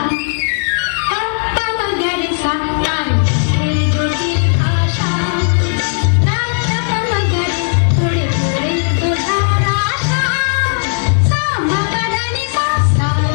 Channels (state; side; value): silent; right; digital silence